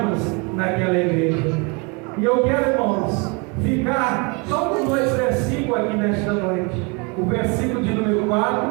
naquela igreja. E eu quero, irmãos, ficar só com 2 versículos aqui nesta noite. O versículo de número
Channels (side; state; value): left; quieter; 30.3 dB